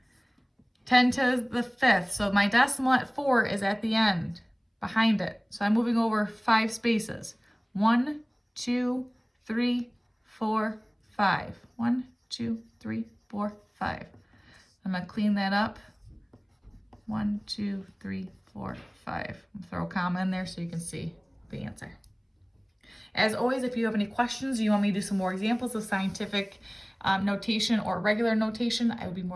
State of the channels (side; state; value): both; identical; correlation 1.00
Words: 10 to the 5th, so my decimal at 4 is at the end, behind it. So I'm moving over 5 spaces. 1, 2, 3, 4, 5. 1, 2, 3, 4, 5. I'm gonna clean that up. 1, 2, 3, 4, 5. Throw a comma in there so you can see the answer. As always, if you have any questions, you want me to do some more examples of scientific notation or regular notation, I would be